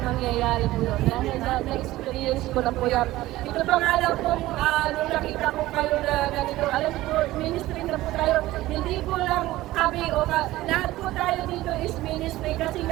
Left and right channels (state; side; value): quieter; left; 16.8 dB